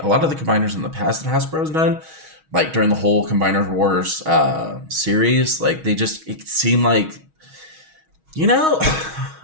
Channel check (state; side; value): late; left; 6.3 ms